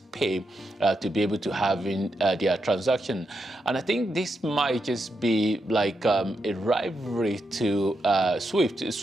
Pay, to be able to have in their transaction. And I think this might just be like a rivalry to SWIFT.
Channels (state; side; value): normal; both; correlation 0.84